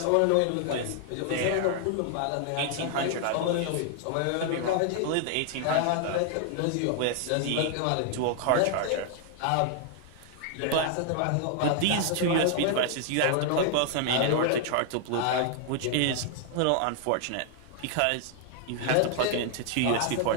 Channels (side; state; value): both; different; correlation 0.00